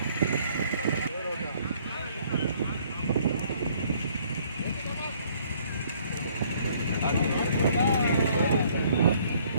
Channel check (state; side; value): inverted; both; correlation -0.62